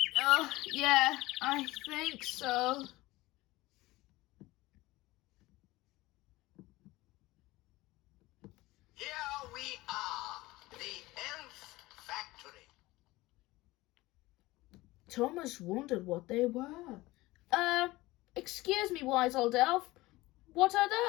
Yeah, I think so. Here we are, the elf factory. Thomas wondered what they were. Excuse me, wise old elf. What are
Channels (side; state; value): right; quieter; 19.4 dB